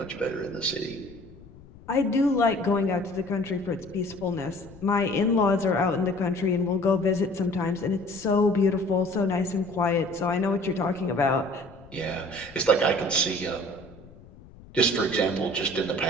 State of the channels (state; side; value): noise; left; rumble, 21 dB below the sound